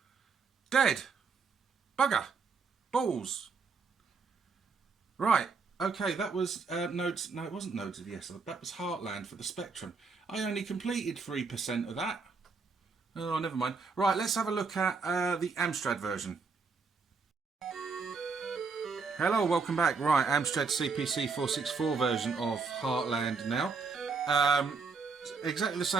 Dead. Bugger. Balls. Right. Okay, that was Nodes... No, it wasn't Nodes of Yesod. That was Heartland for the Spectrum. I only completed 3% of that. Oh, never mind. Right, let's have a look at the Amstrad version. Hello, welcome back. Right, Amstrad CPC 464 version of Heartland now. Exactly the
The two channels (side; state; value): left; quieter; 4.8 dB